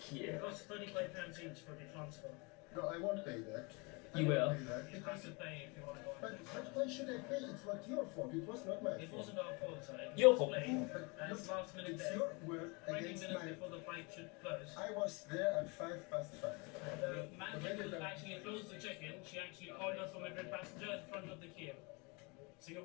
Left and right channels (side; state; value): right; quieter; 29.3 dB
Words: costs £35 each for the transfer. No, I won't pay that. I You won't will. pay that You have to pay if you want to go on. but why should I pay? It's not your fault. It was not my It fault. wasn't our fault, sir. It was Your fault. late, But and it's look, last minute it's there. your word 20 against minutes mine. before the flight should close. I was there at 5:05. The manager who actually closed the check-in, she actually called us from Madrid passenger in front of the queue. So